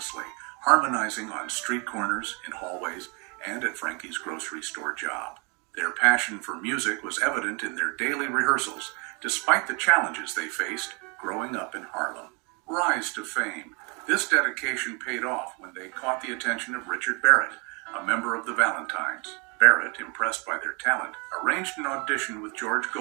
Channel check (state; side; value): quieter; left; 32.5 dB